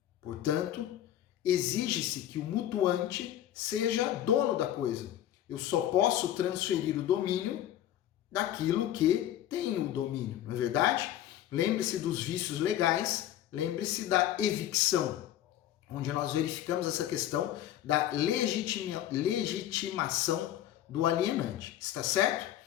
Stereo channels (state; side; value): quieter; right; 12.0 dB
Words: Portanto, exige-se que o mutuante seja dono da coisa. Eu só posso transferir o domínio daquilo que tem o domínio, não é verdade? Lembre-se dos vícios legais, lembre-se da evicção, onde nós verificamos essa questão da legitimação do alienante. Está certo?